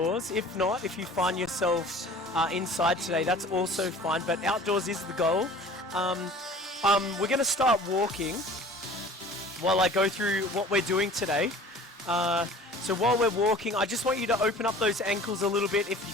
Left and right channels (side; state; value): both; normal; correlation 0.45